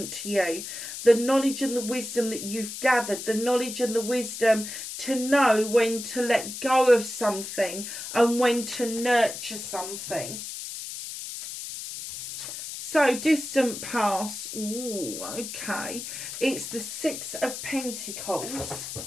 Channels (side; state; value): left; noise; hiss, 8 dB below the sound